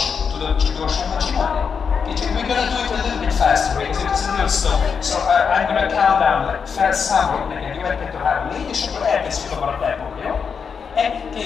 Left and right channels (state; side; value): quieter; right; 6.2 dB